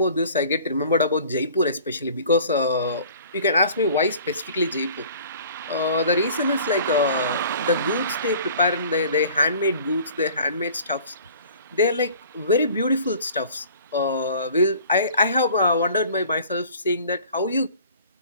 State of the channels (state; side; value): inverted; both; correlation -0.49